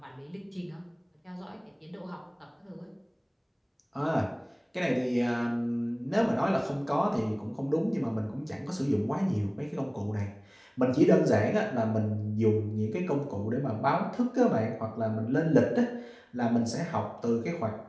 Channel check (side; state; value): both; identical; correlation 1.00